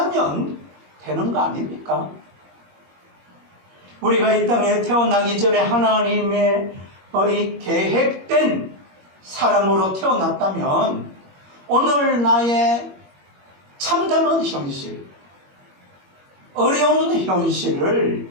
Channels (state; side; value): late; left; 21 ms